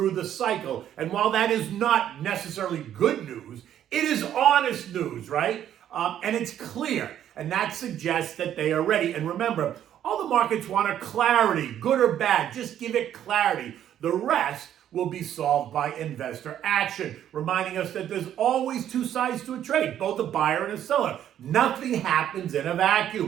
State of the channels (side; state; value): left; quieter; 10.7 dB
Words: the cycle. And while that is not necessarily good news, it is honest news, right? And it's clear. And that suggests that they are ready. And remember, all the markets want are clarity, good or bad. Just give it clarity. The rest will be solved by investor action, reminding us that there's always two sides to a trade, both a buyer and a seller. Nothing happens in a